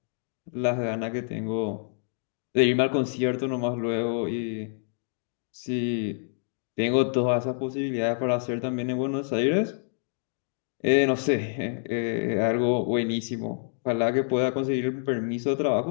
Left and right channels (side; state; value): right; silent; digital silence